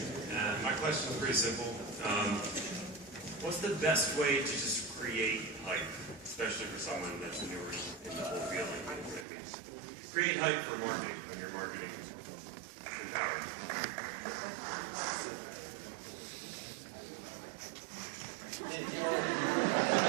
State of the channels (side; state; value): left; drops out; at 9.2 s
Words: My question is pretty simple. What's the best way to just create hype, especially for someone that's newer in the whole field? Like what it means. Create hype for marketing when you're marketing empowered.